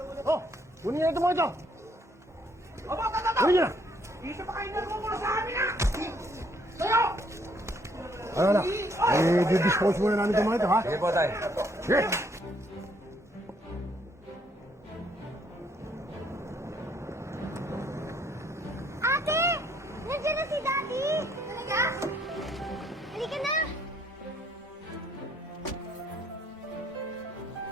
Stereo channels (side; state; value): both; normal; correlation 0.67